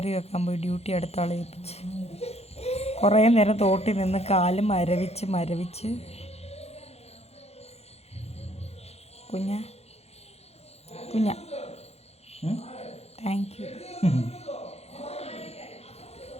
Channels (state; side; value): late; right; 0.30 ms